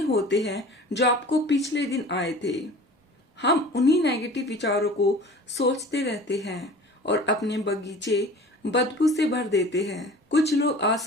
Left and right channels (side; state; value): both; normal; correlation 0.42